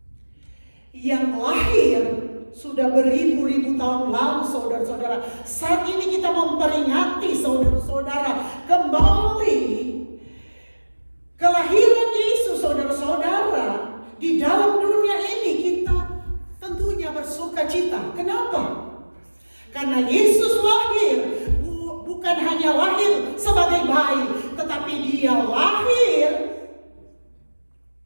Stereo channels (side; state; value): both; inverted; correlation -1.00